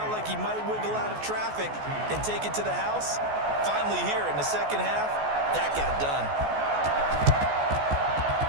like he might wiggle out of traffic and take it to the house. Finally here in the second half, that got done.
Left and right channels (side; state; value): left; late; 14 ms